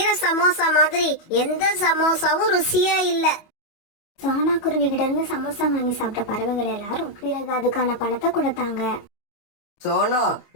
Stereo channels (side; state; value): right; late; 25 ms